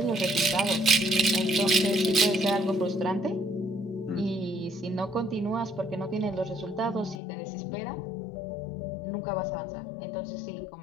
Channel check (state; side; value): drops out; right; at 7.2 s